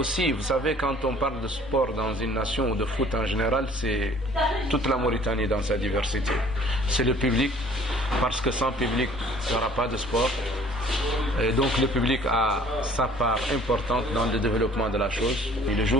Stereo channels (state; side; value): normal; both; correlation 0.54